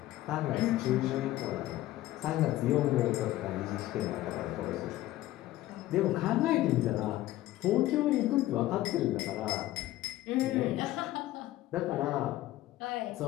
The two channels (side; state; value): right; quieter; 15.4 dB